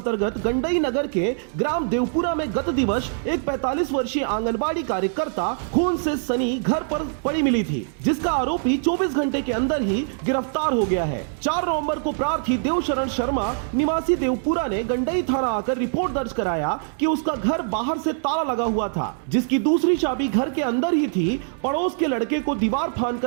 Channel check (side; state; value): left; silent; digital silence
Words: गंडई नगर के ग्राम देवपुरा में गत दिवस एक 45 वर्षीय आंगनबाड़ी कार्यकर्ता खून से सनी घर पर पड़ी मिली थी, जिसका आरोपी 24 घंटे के अंदर ही गिरफ्तार हो गया है। 4 नवंबर को प्रार्थी देवशरण शर्मा निवासी देवपुरा ने गंडई थाना आकर रिपोर्ट दर्ज कराया कि उसका घर बाहर से ताला लगा हुआ था, जिसकी दूसरी चाबी घर के अंदर ही थी। पड़ोस के लड़के को दीवार